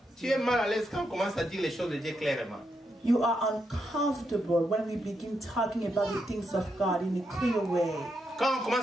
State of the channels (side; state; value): both; normal; correlation 0.82